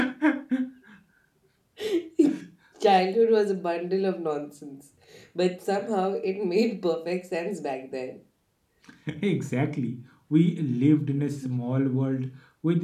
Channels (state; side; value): identical; both; correlation 1.00